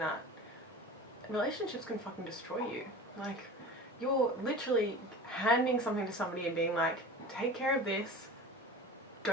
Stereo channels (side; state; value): both; normal; correlation 0.35